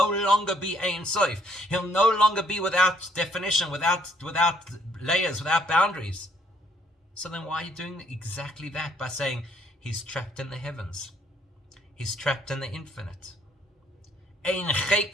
longer be Ein Sof. He'll no longer be without definition, without layers, without boundaries. So then why are you doing exactly that? By saying he's trapped in the heavens. He's trapped in the infinite.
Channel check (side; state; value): both; normal; correlation 0.66